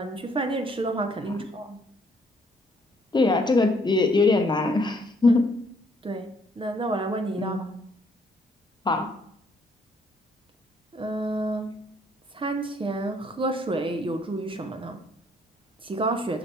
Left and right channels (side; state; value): both; normal; correlation 0.66